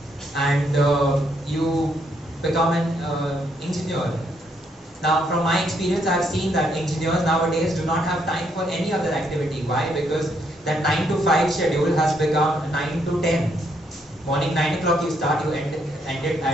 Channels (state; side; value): normal; both; correlation 0.74